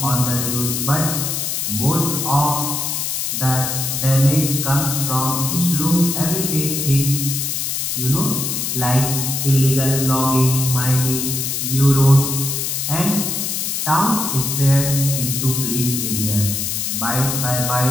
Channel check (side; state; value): left; noise; hiss, 1 dB below the sound